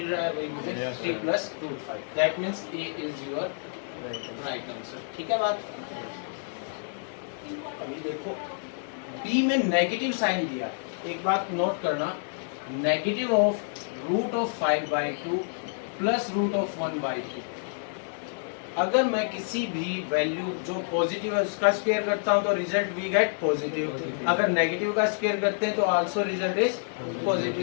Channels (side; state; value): right; silent; digital silence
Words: रहा है भाई मुझे, 3 plus root 5, that means a is your right answer. ठीक है बात। अभी देखो b में नेगेटिव साइन दिया, एक बात नोट करना, negative of root of 5/2 plus root of 1/2। अगर मैं किसी भी वैल्यू जो पॉजिटिव है उसका स्क्वायर करता हूं तो रिजल्ट वी गेट पॉजिटिव, अगर नेगेटिव का स्क्वायर करते हैं तो also result is